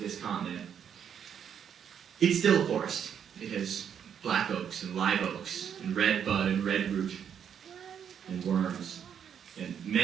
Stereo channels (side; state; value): left; quieter; 8.3 dB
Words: continent. It's still a forest. It has black oaks and live oaks and red bud and red root and worms and